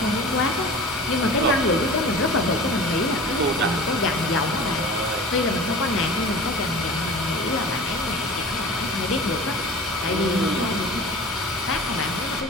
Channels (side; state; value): both; normal; correlation 0.38